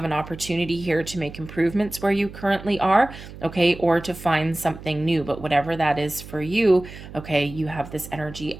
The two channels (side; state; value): right; noise; hum, 15 dB below the sound